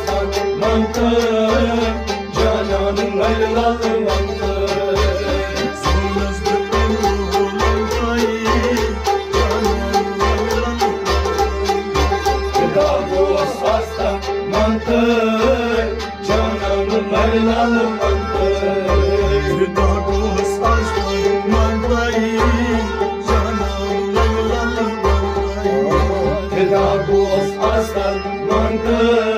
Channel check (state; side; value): identical; both; correlation 1.00